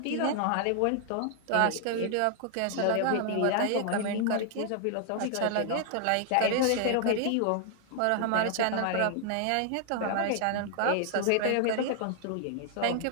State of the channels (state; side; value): different; both; correlation 0.00